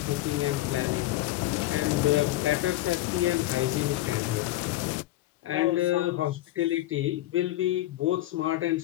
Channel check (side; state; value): right; quieter; 15.8 dB